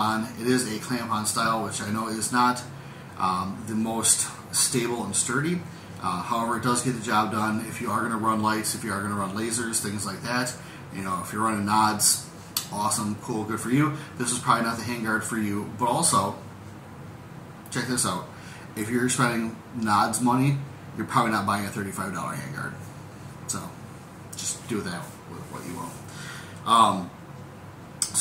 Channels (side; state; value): both; identical; correlation 1.00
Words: It is a clamp-on style, which I know is not the most stable and sturdy. However, it does get the job done if you are going to run lights, if you are going to run lasers, things like that. You know, if you're running nods, awesome, cool, good for you. This is probably not the handguard for you, but also, check this out. If you're spending nods money, you're probably not buying a $35 handguard. So, just do that with what you will.